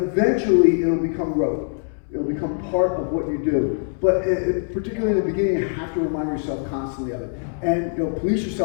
it'll become rote. It'll become part of what you do. But particularly in the beginning, you have to remind yourself constantly of it. And police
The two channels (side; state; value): right; silent; 64 dB below the other